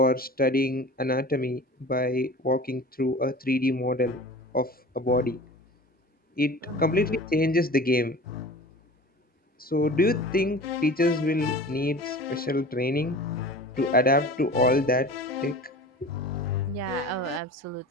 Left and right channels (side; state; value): both; normal; correlation 0.39